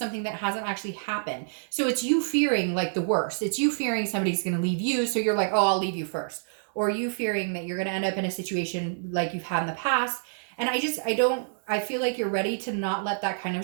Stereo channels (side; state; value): left; silent; digital silence